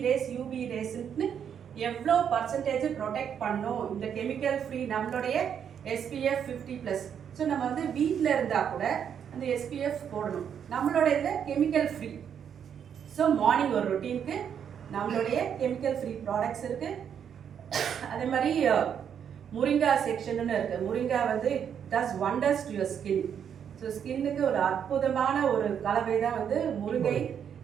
ரேஸ்ன்னு எவ்வளோ பர்சன்டேஜ் ப்ரொடெக்ட் பண்ணும் இந்த கெமிக்கல் ஃப்ரீ நம்மளுடைய SPF 50+. ஸோ நம்ம வந்து வீட்டில் இருந்தால் கூட அந்த SPF போடணும். நம்மளுடைய இதில் கெமிக்கல் ஃப்ரீ. ஸோ மார்னிங் ஒரு ரொட்டீனுக்கு நம்மளுடைய கெமிக்கல் ஃப்ரீ ப்ராடக்ட்ஸ் இருக்குது. அதே மாதிரி முருங்கா செக்ஷன்னு இருக்குது. முருங்கா வந்து does wonders to your skin. So ஸ்கின்னுக்கு ஒரு அற்புதமான ஒரு கலவை தான் வந்து முருங்கை.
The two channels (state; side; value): quieter; left; 8.2 dB